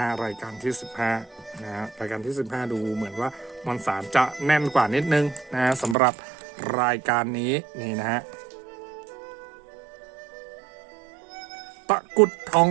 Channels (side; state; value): left; drops out; at 6.0 s